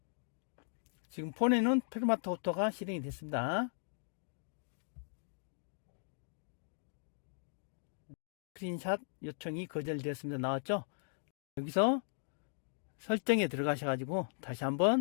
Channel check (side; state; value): right; silent; digital silence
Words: 지금 폰에는 페르마타 오토가 실행이 됐습니다. 스크린샷 요청이 거절되었습니다. 나왔죠? 여기서 설정에 들어가셔가지고 다시